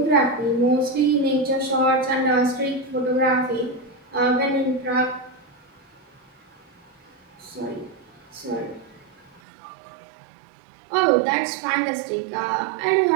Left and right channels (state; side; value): drops out; left; at 9.4 s